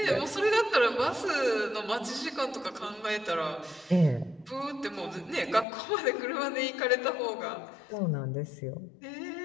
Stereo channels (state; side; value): drops out; right; at 5.7 s